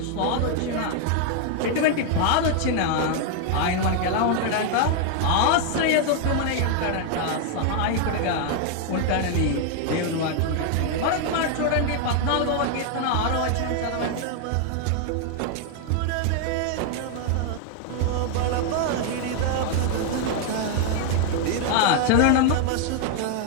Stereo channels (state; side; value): different; both; correlation 0.00